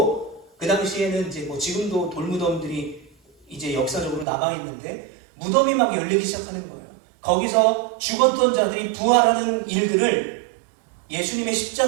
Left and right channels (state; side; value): drops out; left; at 4.2 s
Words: 그 당시에는 이제 지금도 돌무덤들이 이제 역사적으로 남아있는데 무덤이 막 열리기 시작하는 거예요. 거기서 죽었던 자들이 부활하는 일들을 예수님의